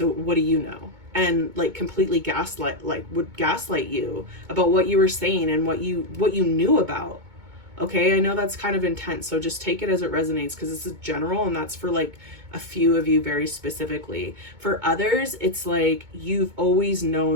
what do you know? And like completely would gaslight you about what you were saying and what you knew about. Okay, I know that's kind of intense, so just take it as it resonates, because this is general, and that's for like a few of you very specifically. For others, it's like you've always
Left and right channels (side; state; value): left; late; 2.2 ms